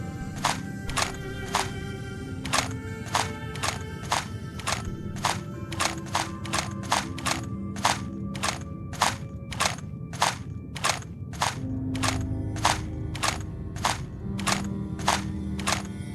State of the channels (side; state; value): both; identical; correlation 1.00